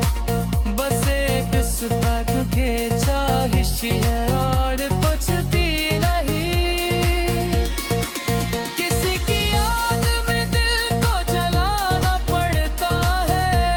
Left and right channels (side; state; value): both; identical; correlation 1.00